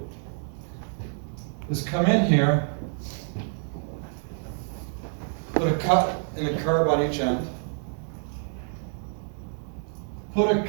is come in here, put a cut and a curb on each end, put a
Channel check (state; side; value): silent; left; 57 dB below the other